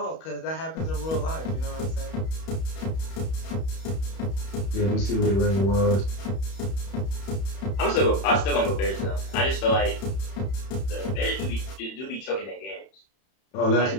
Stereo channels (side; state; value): right; late; 31 ms